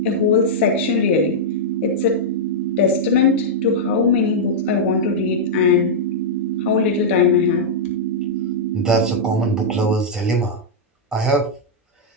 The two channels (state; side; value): normal; both; correlation -0.07